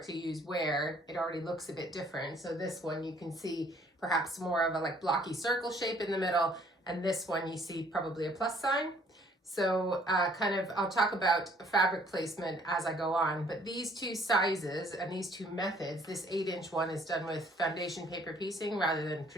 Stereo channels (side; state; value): both; normal; correlation 0.61